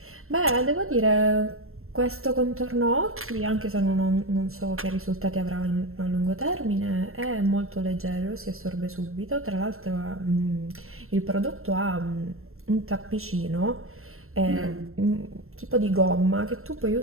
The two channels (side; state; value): left; late; 0.62 ms